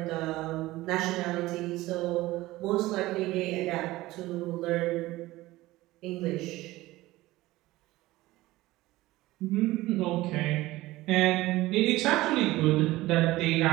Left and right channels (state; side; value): quieter; left; 18.1 dB